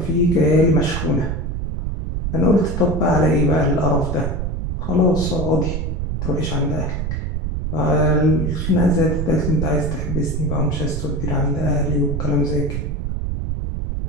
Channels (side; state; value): right; noise; rumble, 2 dB below the sound